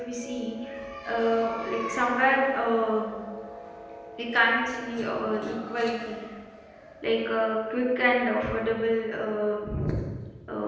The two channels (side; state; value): both; identical; correlation 1.00